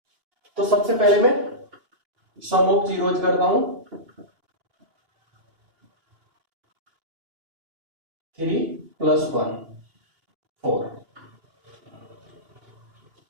तो सबसे पहले मैं सम ऑफ जीरोज करता हूं, 3 प्लस 1 4।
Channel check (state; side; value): late; left; 2.8 ms